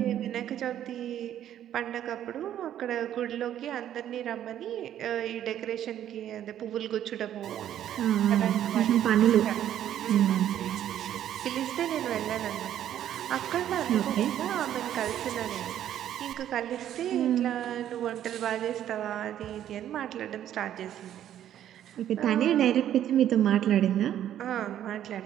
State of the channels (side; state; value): left; quieter; 11.0 dB